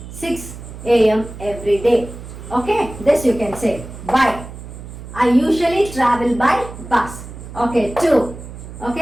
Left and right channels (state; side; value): noise; right; hum, 13 dB below the sound